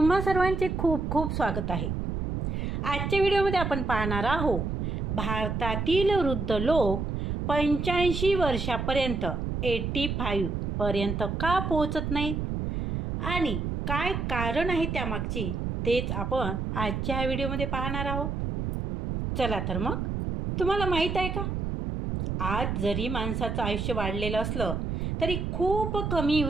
सर्वांचे खूप खूप स्वागत आहे. आजच्या व्हिडिओमध्ये आपण पाहणार आहोत भारतातील वृद्ध लोक 85 वर्षापर्यंत 85 पर्यंत का पोहोचत नाहीत आणि काय कारण आहे त्यामागची, तेच आपण आजच्या व्हिडिओमध्ये पाहणार आहोत. चला तर मग, तुम्हाला माहीत आहे का, आज जरी माणसाचं आयुष्य वाढलेलं असलं तरी खूप कमी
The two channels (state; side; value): noise; right; rumble, 2 dB below the sound